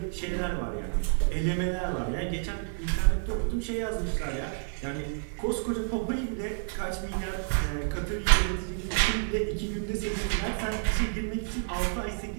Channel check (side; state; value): left; silent; digital silence